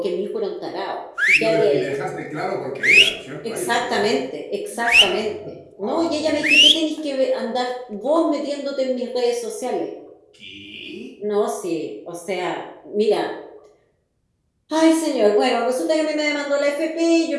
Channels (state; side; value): identical; both; correlation 1.00